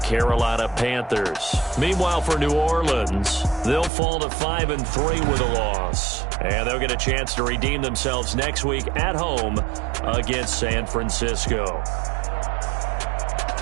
Panthers. Meanwhile, for New Orleans, they'll fall to 5-3 with a loss. And they'll get a chance to redeem themselves next week at home against San Francisco.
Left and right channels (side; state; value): left; drops out; at 3.9 s